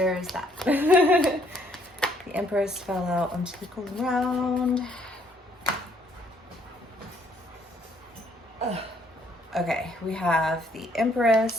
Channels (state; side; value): normal; both; correlation 0.66